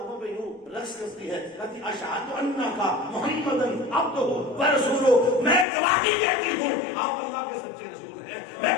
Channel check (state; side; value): drops out; right; at 5.7 s